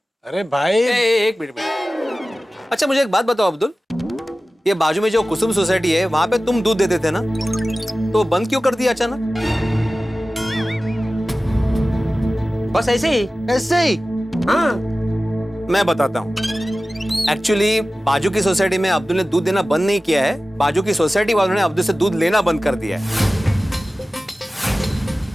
अरे भाई एक मिनट। अच्छा मुझे एक बात बताओ अब्दुल, ये बाजू में जो कुसुम सोसाइटी है वहां पे तुम दूध देते थे ना, तो बंद क्यों कर दिया अचानक? बस ऐसे ही। ऐसे ही? हाँ मैं बताता हूँ। एक्चुअली बाजू की सोसाइटी में अब्दुल ने दूध देना बंद नहीं किया है, बाजू की सोसाइटी वालों ने अब्दुल से दूध लेना बंद कर दिया है।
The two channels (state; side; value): normal; both; correlation 0.96